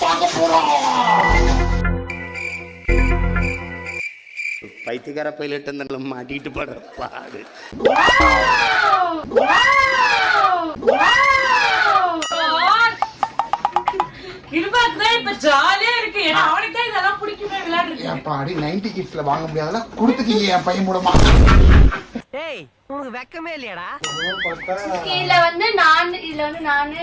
பார்க்க போறோம். பைத்தியக்கார பைலட் அந்த மாட்டிட்டு படுற பாடு. கிருபாக்கு இப்ப ஜாலியா இருக்கு. ஏன்னா அவனுக்கு தான் இதெல்லாம் பிடிக்குமே விளையாடுறது. ஏப்பாடி 90 கிட்ஸ்ல வாங்க முடியாதெல்லாம் கொடுத்துட்டீங்க என் பையன் மூலமா. டேய் உங்களுக்கு வெக்கமே இல்லையாடா? இதுல வந்து நானு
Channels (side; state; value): both; identical; correlation 1.00